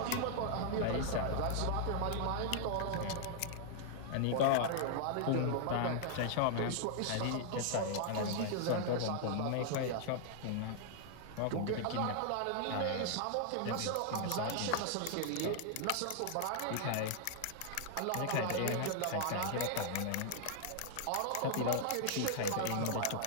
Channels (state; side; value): different; both; correlation 0.00